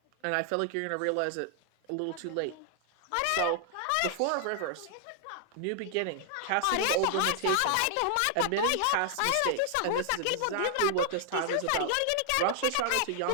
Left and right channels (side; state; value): both; different; correlation 0.00